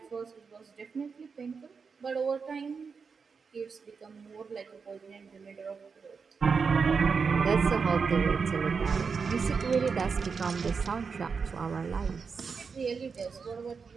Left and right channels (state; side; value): quieter; left; 5.4 dB